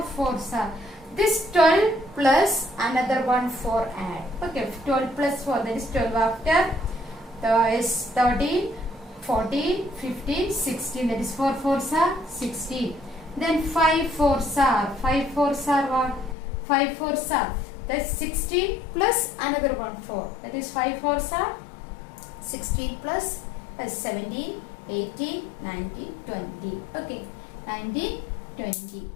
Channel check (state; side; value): drops out; right; at 16.4 s